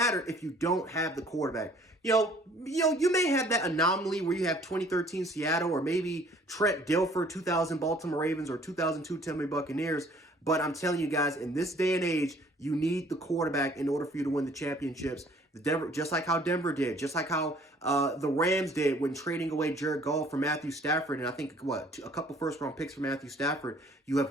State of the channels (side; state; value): both; normal; correlation 0.56